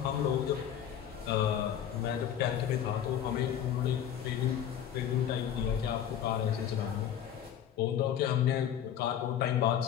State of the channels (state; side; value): quieter; right; 9.7 dB